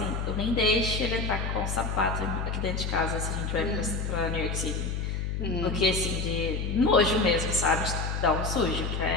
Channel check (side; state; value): left; noise; hum, 2 dB below the sound